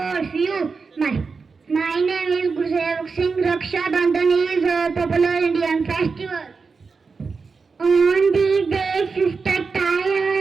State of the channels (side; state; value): left; quieter; 4.8 dB